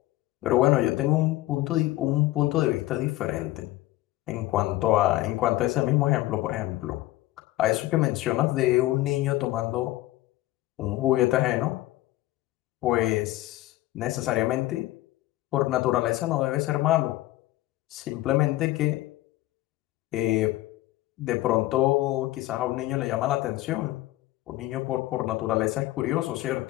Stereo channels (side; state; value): right; quieter; 17.0 dB